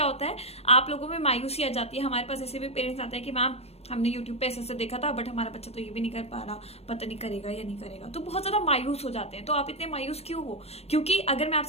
होता है, आप लोगों में मायूसी आ जाती है। हमारे पास ऐसे भी पेरेंट्स आते हैं कि मैम हमने यूट्यूब पे ऐसे देखा था बट हमारा बच्चा तो ये भी नहीं कर पा रहा, पता नहीं करेगा या नहीं करेगा। तो बहुत ज्यादा मायूस हो जाते हैं। तो आप इतने मायूस क्यों हो? क्योंकि अगर मैं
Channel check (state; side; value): late; right; 0.30 ms